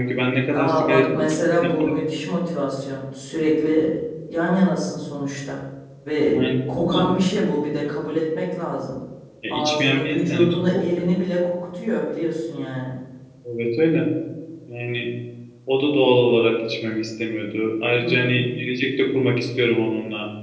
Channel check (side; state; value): both; identical; correlation 1.00